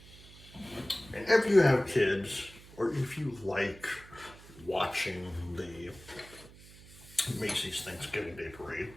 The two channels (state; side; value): noise; right; hum, 20 dB below the sound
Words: And if you have kids, or if you like watching the Macy's Thanksgiving Day Parade,